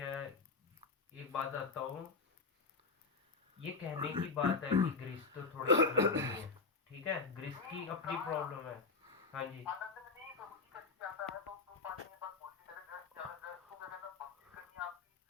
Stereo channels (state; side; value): quieter; right; 4.3 dB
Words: एक बात आता हूँ, ये कहने की बात है कि गृहस्थ तो थोड़े अलग होते हैं, ठीक है, गृहस्थ नहीं की अपनी कहा प्रॉब्लम है। हाँ जी। आनंद में नहीं, प्रभु जी कैसे चाहता है तो पानी में बस बोल के करे ग्रस्त ज्यादा, ग्रस्त को क्या करना, भक्ति करनी है आपकी,